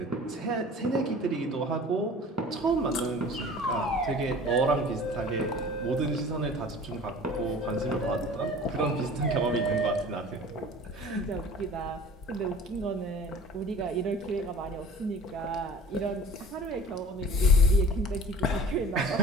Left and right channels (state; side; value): normal; both; correlation 0.43